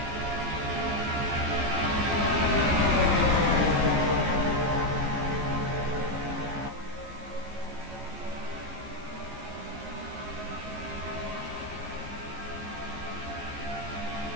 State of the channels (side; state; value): left; late; 14 ms